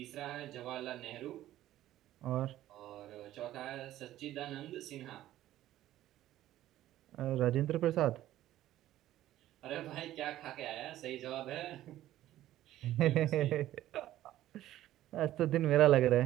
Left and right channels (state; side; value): quieter; left; 13.8 dB